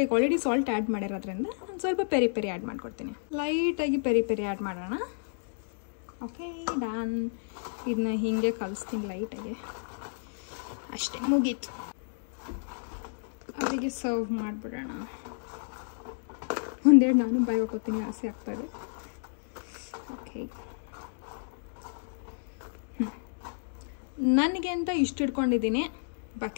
ಈಗ ಆಲ್ರೆಡಿ ಸಾಲ್ಟ್ ಆ್ಯಡ್ ಮಾಡಿರೋದ್ರಿಂದ ನಾನು ಸ್ವಲ್ಪ ಪೆರಿ ಆ್ಯಡ್ ಮಾಡ್ಕೊಡ್ತೀನಿ. ಲೈಟಾಗಿ ಪೆರಿ ಆ್ಯಡ್ ಮಾಡೋಣ. Okay done. ಇದನ್ನ ಹೀಗೆ ಕಲಿಸ್ತೀನಿ ಲೈಟಾಗಿ, ಅಷ್ಟೇ ಮುಗೀತು. ಅವರಿಗೆ ಸರ್ವ್ ಮಾಡಿಬಿಡೋಣ. ಒಂದೆರಡು ನಾನು ಬಾಯಿ ಹಾಕೋತೀನಿ, ಆಸೆ ಆಗ್ತಾಯಿದೆ. ಓಕೆ, ನನಗೆ ಅಂತ ಇಷ್ಟು ಇಟ್ಕೊಂಡಿದ್ದೀನಿ,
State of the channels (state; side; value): silent; right; digital silence